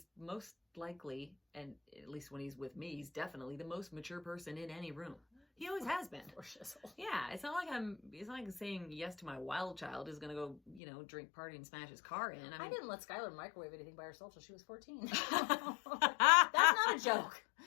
most likely, and at least when he's with me, he's definitely the most mature person in any room. He always has been. Poor shizzle. Yeah, it's not like saying yes to my wild child is going to go, you know, drink, party, and smash his car in. I didn't let Skylar microwave anything by herself till she was 14. That's That's not a joke.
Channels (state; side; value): drops out; right; at 10.8 s